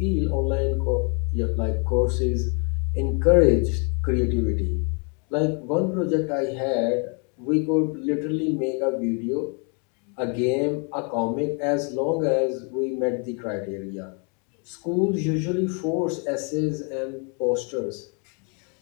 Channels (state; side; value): quieter; right; 37.2 dB